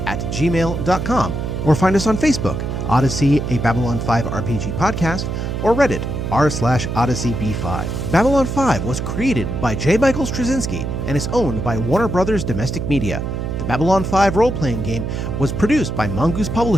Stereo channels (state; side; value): noise; right; hum, 3 dB below the sound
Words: or find us on Facebook, Odyssey, a Babylon 5 RPG podcast, or Reddit, r/OdysseyB5. Babylon 5 was created by J. Michael Straczynski and is owned by Warner Brothers Domestic Media. The Babylon 5 role-playing game was produced by Mongoose